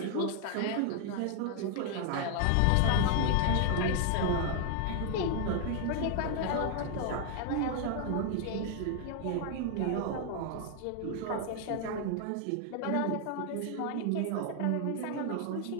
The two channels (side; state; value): both; different; correlation 0.00